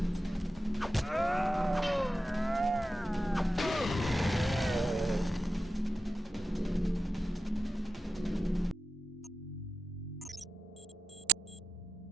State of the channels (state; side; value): normal; both; correlation 0.90